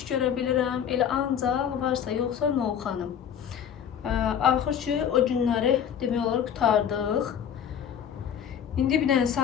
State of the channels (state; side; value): quieter; right; 8.6 dB